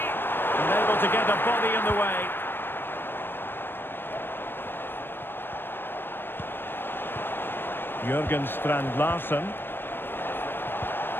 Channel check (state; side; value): late; right; 0.099 ms